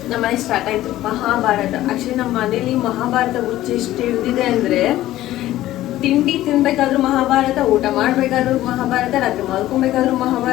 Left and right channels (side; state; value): right; quieter; 14.8 dB